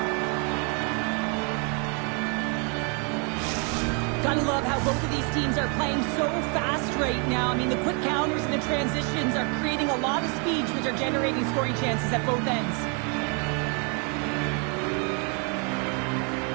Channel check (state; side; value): quieter; left; 36.4 dB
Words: Gotta love how both of these teams are playing so fast right now. I mean, the quick counters and the transitions are creating a lot of speeds, which are generating scoring chances at both ends.